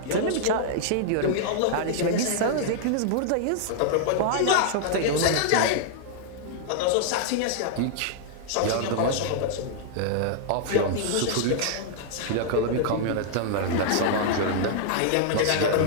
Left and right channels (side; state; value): both; different; correlation -0.01